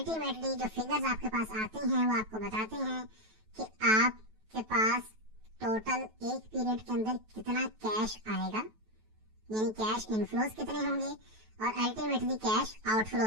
जो फिगर्स आपके पास आते हैं वो आपको बताते हैं कि आपके पास टोटल एक पीरियड के अंदर कितना कैश आएगा, यानी कैश इनफ्लोज कितने होंगे और अल्टीमेटली कैश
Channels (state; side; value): late; left; 9.2 ms